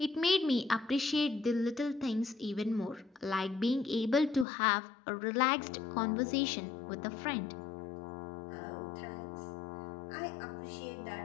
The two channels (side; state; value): right; drops out; at 4.5 s